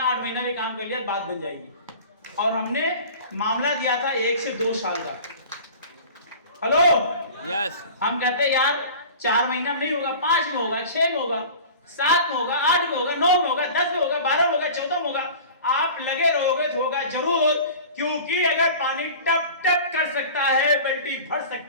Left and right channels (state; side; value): inverted; both; correlation -0.39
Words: 8 महीना में काम कर लिया, बात बन जाएगी। और हमने मामला दिया था 1 से 2 साल का। Hello, yes. हम कहते हैं यार 4 महीना में नहीं होगा, 5 में होगा, 6 में होगा, 7 में होगा, 8 में होगा, 9 में होगा, 10 में होगा, 12 में होगा, 14 में होगा। आप लगे रहोगे तो होगा जरूर, क्योंकि अगर पानी टप टप कर सकता है, बल्टी भर